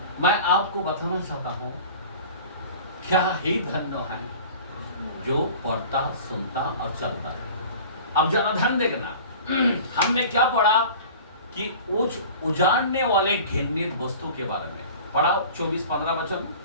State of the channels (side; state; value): both; inverted; correlation -0.41